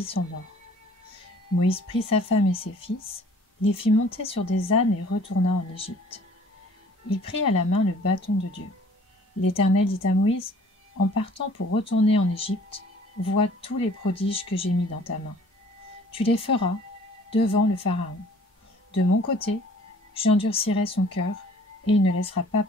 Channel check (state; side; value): normal; both; correlation 0.53